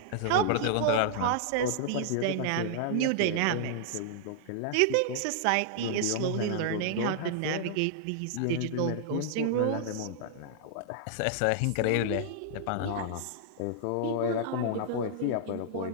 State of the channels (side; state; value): both; different; correlation -0.01